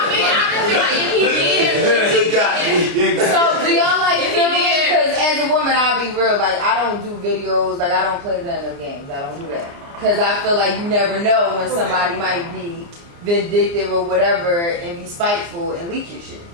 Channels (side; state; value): left; late; 29 ms